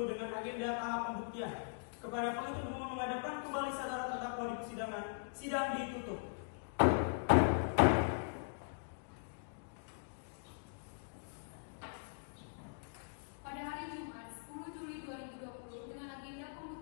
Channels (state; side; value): silent; right; digital silence